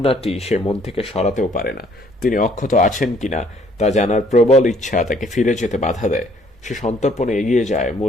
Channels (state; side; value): normal; both; correlation 0.62